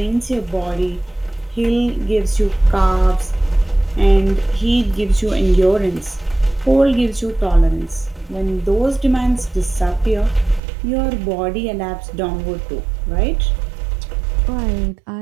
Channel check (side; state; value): left; drops out; at 10.6 s